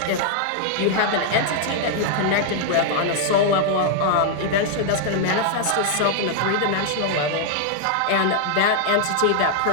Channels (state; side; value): different; both; correlation -0.01